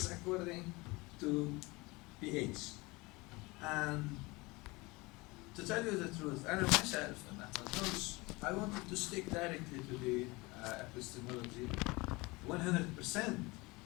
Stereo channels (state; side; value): quieter; right; 23.8 dB